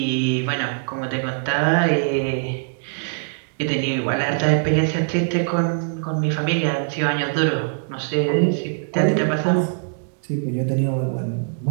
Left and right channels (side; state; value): left; silent; digital silence